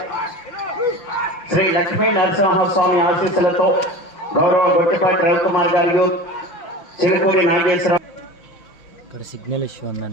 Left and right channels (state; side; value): late; right; 5.9 ms